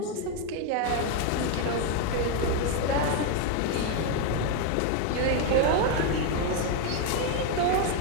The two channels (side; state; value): both; different; correlation 0.01